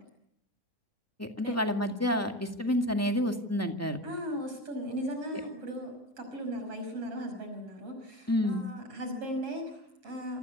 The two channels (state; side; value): normal; both; correlation 0.27